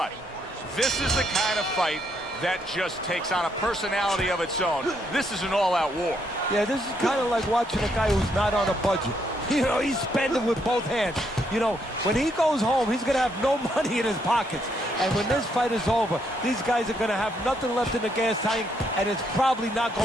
This is the kind of fight that just takes on a personality of its own. This is an all-out war. Yeah, this is kind of like watching a guy who's not on a budget. You know, he's spending with both hands. You know, when he goes home, he's going to have no money in his pockets. And when this fight is over, these guys are going to have nothing left in the gas tank, and it's probably not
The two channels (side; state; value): both; normal; correlation 0.74